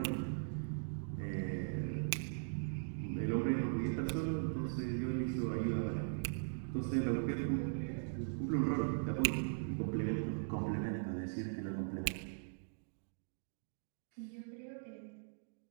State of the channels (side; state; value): left; silent; digital silence